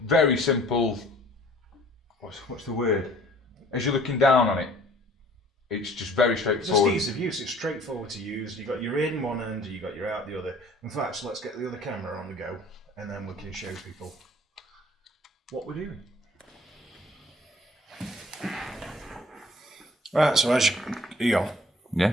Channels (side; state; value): both; normal; correlation 0.53